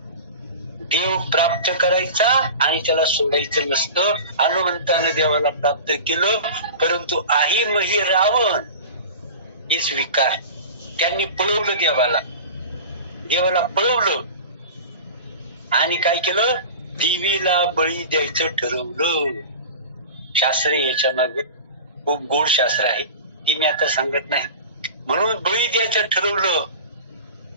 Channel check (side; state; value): both; inverted; correlation -0.34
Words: देव प्राप्त करायचा आणि त्याला सोडायचं नसतं. हनुमंतानं देवाला प्राप्त केलं परंतु आई मही रावण हे स्वीकार त्यांनी पळवलं देवाला पळवलं आणि काय केलं देवीला बळी द्यायचं ठरवलं. शास्त्र याच्या मागे खूप गोड शास्त्र आहे ती मी आता सांगत नाही. म्हणून बळी द्यायचं ठरवलं.